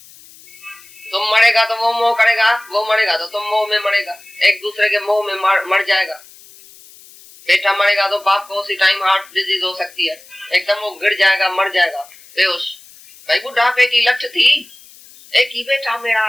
तुम मरेगा तो वो मोह करेगा, वो मरेगा तो तुम मोह में मरेगा। एक दूसरे के मोह में मर जाएगा। बेटा मरेगा तो बाप को उसी टाइम हार्ट डिजीज हो सकती है, एकदम वो गिर जाएगा, मर जाएगा बेहोश। भाई बुढ़ापे की लठ थी, एक ही बेटा मेरा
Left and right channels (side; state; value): left; noise; hiss, 23 dB below the sound